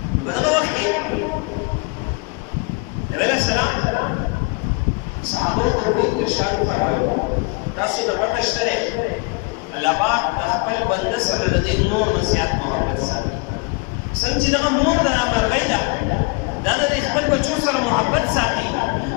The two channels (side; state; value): right; quieter; 30.1 dB